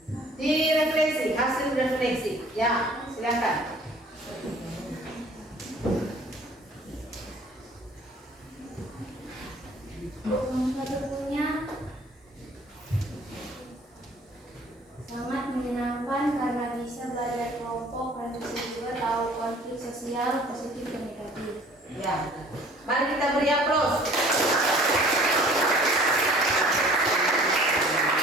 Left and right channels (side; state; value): both; normal; correlation 0.52